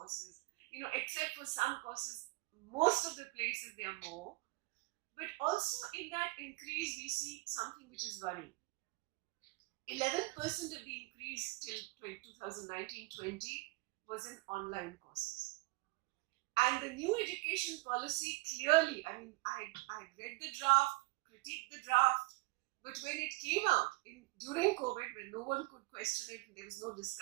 except for some courses, most of the places they are more. But also in that increase, we see something which is worrying. 11% of the increase till 2019-20 was in online courses. And the new education policy clearly, I read the draft, critiqued the draft, but when it came out during COVID, when no one could question it, there was no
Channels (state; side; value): quieter; left; 24.8 dB